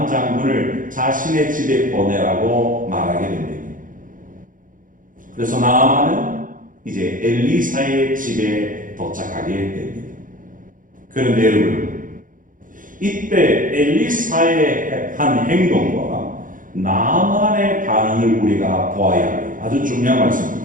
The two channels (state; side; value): late; left; 0.39 ms